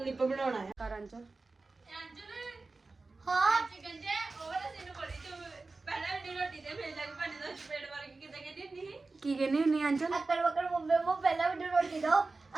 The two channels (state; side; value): quieter; left; 3.6 dB